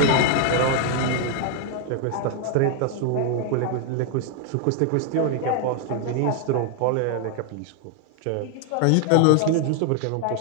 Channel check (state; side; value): different; both; correlation 0.00